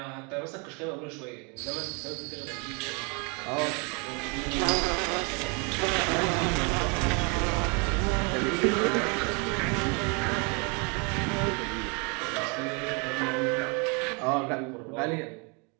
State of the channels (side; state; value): left; quieter; 33.0 dB